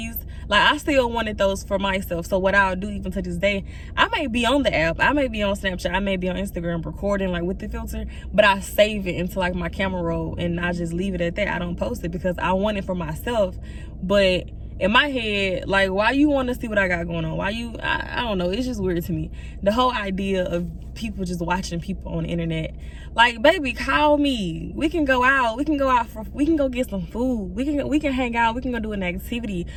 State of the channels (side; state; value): both; identical; correlation 1.00